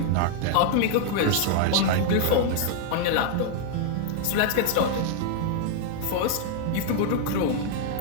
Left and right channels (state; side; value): different; both; correlation 0.00